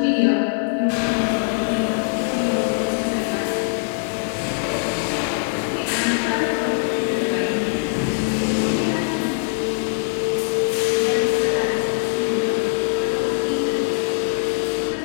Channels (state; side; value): silent; right; 64 dB below the other